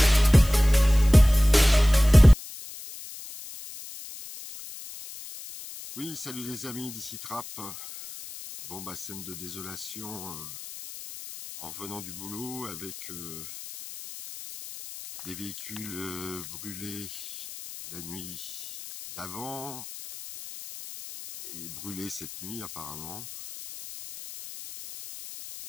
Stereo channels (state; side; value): noise; left; hiss, 13 dB below the sound